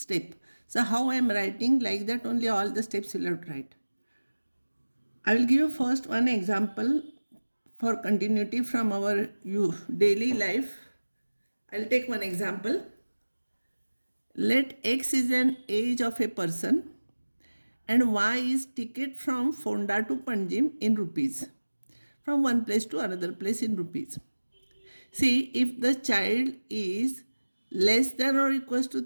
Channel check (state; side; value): inverted; both; correlation -1.00